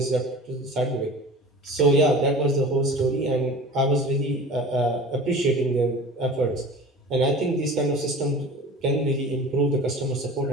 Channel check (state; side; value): normal; both; correlation 0.39